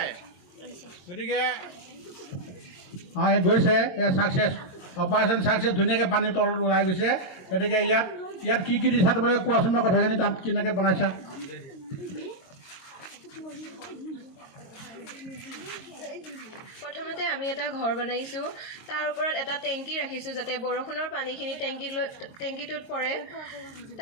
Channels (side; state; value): right; late; 22 ms